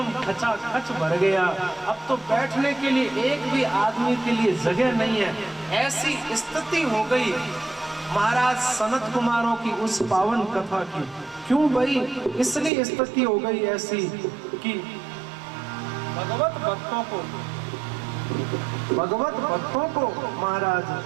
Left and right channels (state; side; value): drops out; left; at 12.7 s